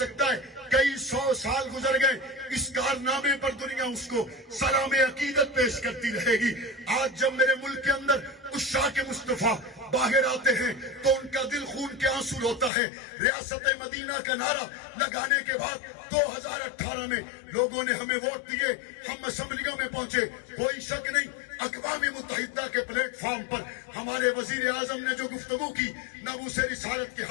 ہے کئی 100 سال گزر گئے، اس کارنامے پر دنیا اس کو سلام عقیدت پیش کرتی رہے گی۔ آج جب میرے ملک کے اندر عشاق مصطفیٰ باہر آتے ہیں تو ان کا دل خون کے آنسو ہوتا ہے۔ ریاست مدینہ کا نعرہ لگانے کے بعد 2018 میں لوگوں نے ہمیں ووٹ دیے، ہم اسمبلیوں میں پہنچے، کوئی شک نہیں اقوام متحدہ کے پلیٹ فارم پر ہمارے وزیر اعظم نے جو گفتگو کی ناموس رسالت کے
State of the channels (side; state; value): right; drops out; at 12.7 s